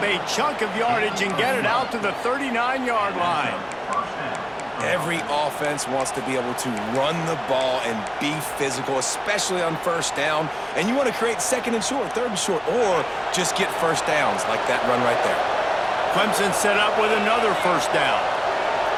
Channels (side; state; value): both; identical; correlation 1.00